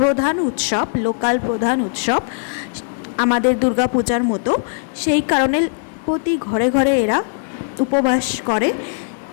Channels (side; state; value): right; silent; digital silence